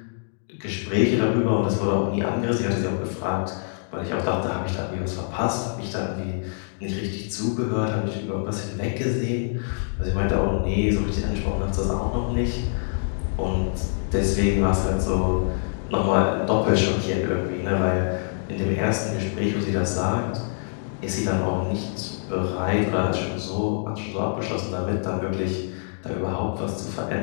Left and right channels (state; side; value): silent; right; digital silence